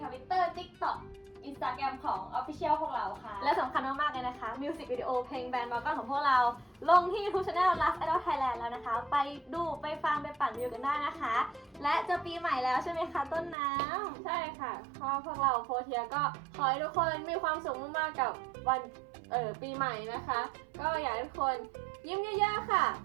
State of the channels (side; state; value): left; drops out; at 13.6 s